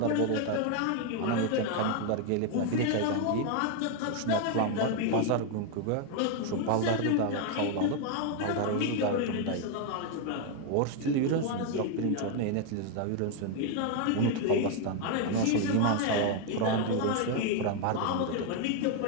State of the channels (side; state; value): both; different; correlation 0.01